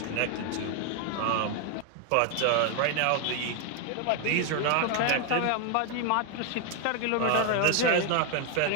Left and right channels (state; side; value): different; both; correlation 0.01